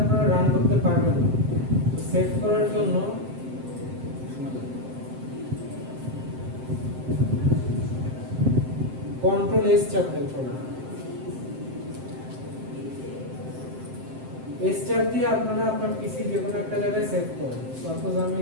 আপনারা রান করতে পারবেন না। সেভ করার জন্য কন্ট্রোল এস চাপবেন। এস চাপ দিয়ে আপনারা আপনার পিসি যে কোনো একটা জায়গায় সেভ করুন। সাপোজ আমি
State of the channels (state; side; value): late; left; 7.7 ms